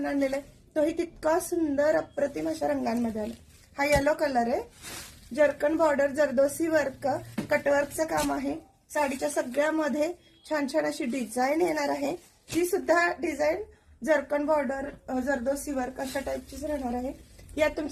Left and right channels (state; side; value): identical; both; correlation 1.00